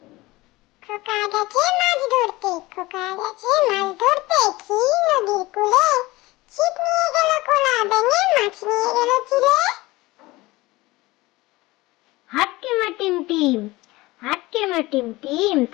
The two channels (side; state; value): right; quieter; 20.3 dB